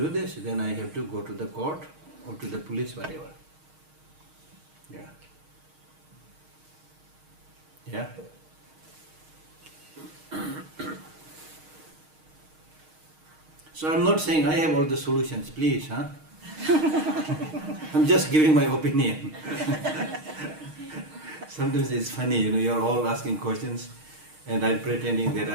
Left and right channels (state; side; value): late; left; 6.4 ms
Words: this, then I have to go to the court or to the police, whatever. Yeah. Yeah. So I'm not saying I have all the solutions, please, huh? I'm just giving my opinion. Sometimes it's funny, you're all asking questions and I'm pretending that